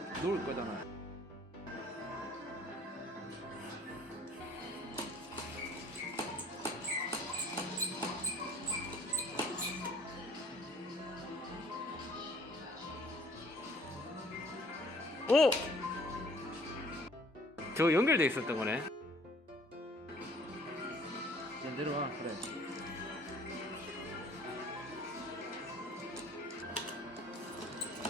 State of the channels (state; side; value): normal; both; correlation 0.56